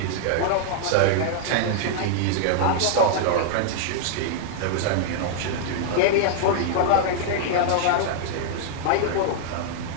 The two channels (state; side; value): different; both; correlation -0.01